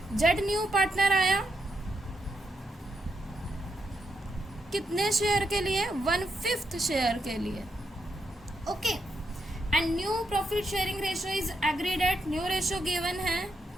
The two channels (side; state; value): both; normal; correlation 0.81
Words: Z new partner आया कितने शेयर के लिए, 1/5 शेयर के लिए। Okay, and new profit sharing ratio is agreed at, new ratio given है